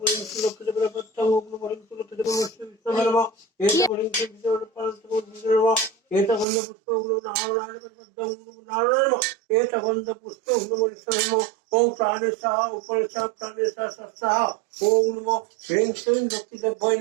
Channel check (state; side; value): drops out; left; at 6.5 s